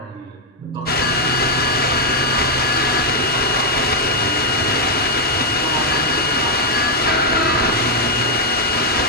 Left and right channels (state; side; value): normal; both; correlation 0.00